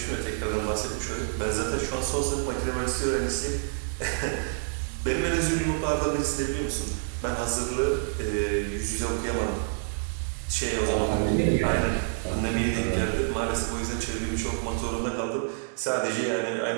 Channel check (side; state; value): left; silent; digital silence